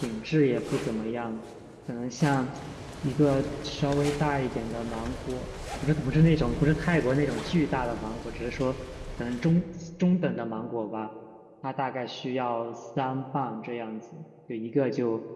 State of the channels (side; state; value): both; identical; correlation 1.00